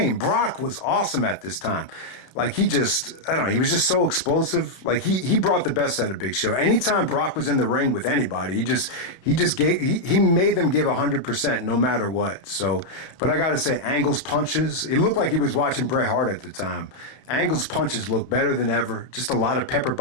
Brock was awesome at this time. Like he was just so explosive. Like he brought the best out of Big Show. Anytime Brock was in the ring with anybody, he made them give 100% no matter what. So, but I gotta say, Angle's punches, it looked like he was watching Bret Hart at the time. Angle's punches look better than ever. Just a lot of pepper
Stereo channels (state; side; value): late; right; 31 ms